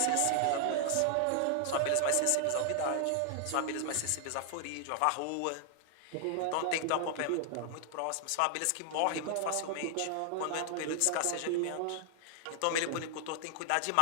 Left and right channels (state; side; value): different; both; correlation 0.00